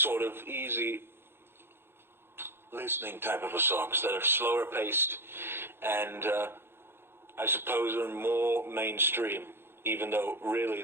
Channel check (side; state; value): left; late; 0.11 ms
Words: of easy listening type of songs that are slower paced and I suppose are more mainstream, even though really